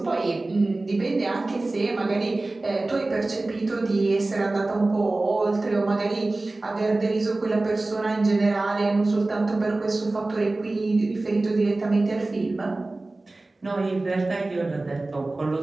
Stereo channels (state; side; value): quieter; left; 3.0 dB